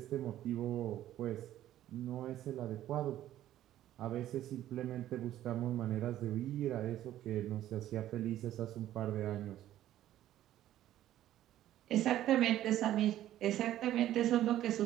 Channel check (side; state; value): left; quieter; 12.9 dB